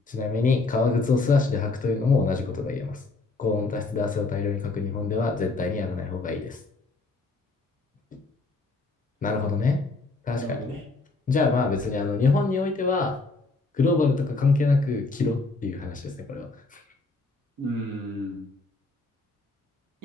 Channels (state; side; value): quieter; right; 3.5 dB